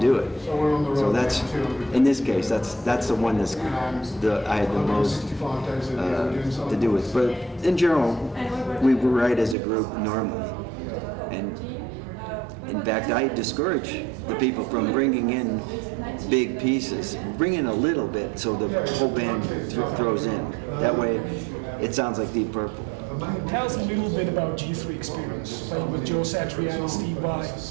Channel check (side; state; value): left; drops out; at 9.6 s